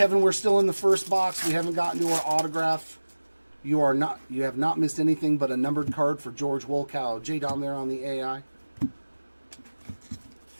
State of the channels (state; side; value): inverted; both; correlation -1.00